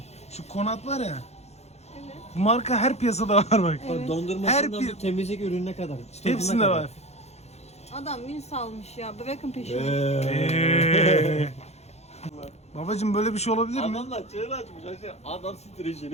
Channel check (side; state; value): right; late; 0.31 ms